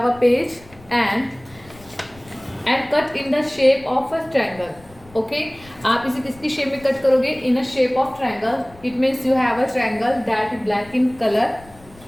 a page and cut in the shape of a triangle. Okay, आप इसे किसकी शेप में कट करोगे? In a shape of triangle. It means you have a triangle that is black in colour.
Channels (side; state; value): left; noise; rumble, 24 dB below the sound